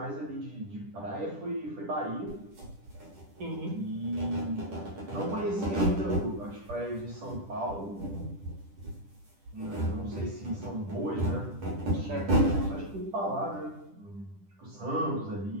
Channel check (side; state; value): left; late; 10 ms